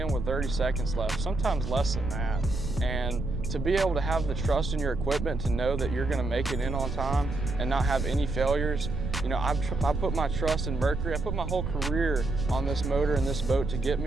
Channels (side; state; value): right; noise; rumble, 4 dB below the sound